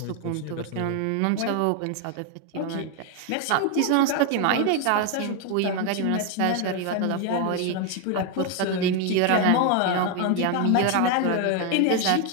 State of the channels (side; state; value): both; different; correlation 0.01